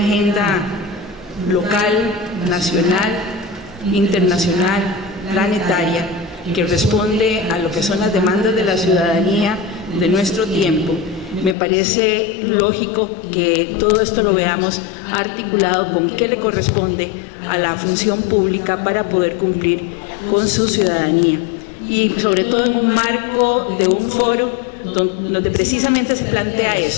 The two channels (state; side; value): drops out; right; at 11.6 s